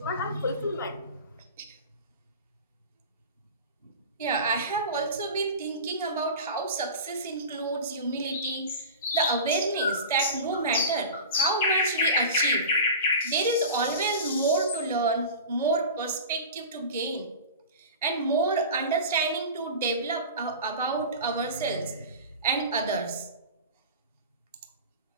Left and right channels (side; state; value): both; inverted; correlation -0.32